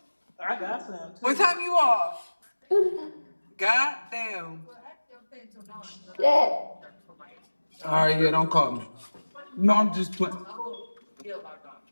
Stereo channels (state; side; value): inverted; both; correlation -1.00